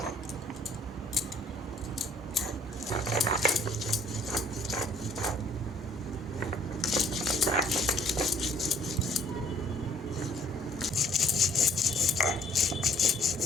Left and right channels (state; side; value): normal; both; correlation 0.60